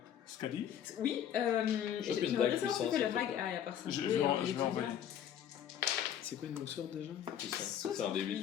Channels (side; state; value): right; quieter; 9.7 dB